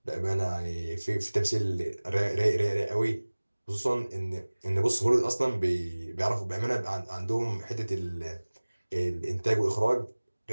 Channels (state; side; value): inverted; both; correlation -1.00